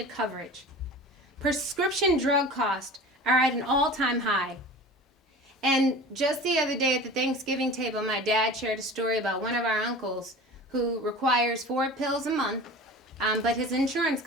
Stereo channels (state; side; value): normal; both; correlation 0.37